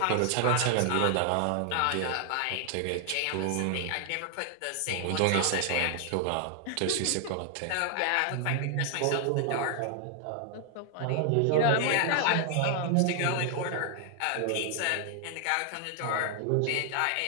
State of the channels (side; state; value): both; different; correlation 0.00